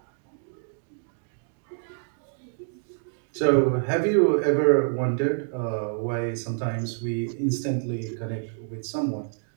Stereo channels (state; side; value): silent; left; digital silence